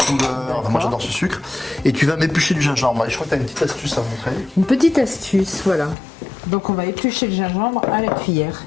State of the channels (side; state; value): right; drops out; at 6.0 s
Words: Moi j'adore ce sucre. Et tu vas m'éplucher du gingembre. Et je crois que tu as une petite astuce à montrer. Une petite astuce, voilà. Donc on va éplucher le gingembre à la cuillère.